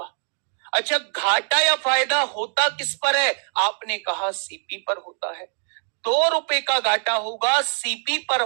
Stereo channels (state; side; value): silent; left; digital silence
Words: अच्छा, घाटा या फायदा होता किस पर है? आपने कहा सीपी पर होता है। 2 रुपए का घाटा होगा, सीपी पर